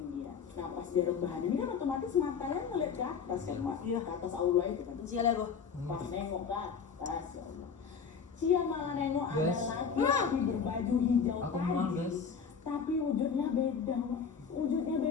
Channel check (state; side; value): quieter; right; 6.3 dB